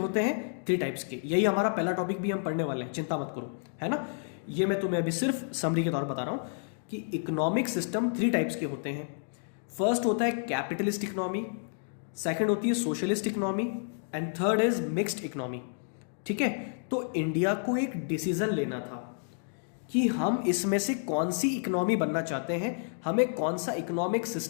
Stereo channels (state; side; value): silent; right; digital silence